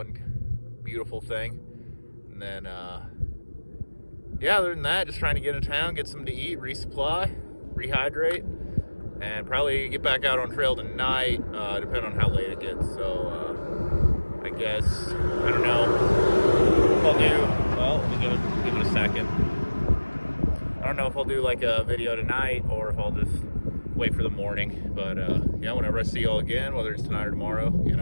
beautiful thing. And then, yeah, other than that, just trying to get in town, get something to eat, resupply, rehydrate, and probably get back out on trail tonight, depending on how late it gets. So, I guess, I don't know if I'll do, well, let me give it a second. I don't know if I'll do like a video tonight or if I'll just wait for the morning. But, yeah, whenever I see y'all again, whether it's tonight or tomorrow,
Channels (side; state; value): both; inverted; correlation -1.00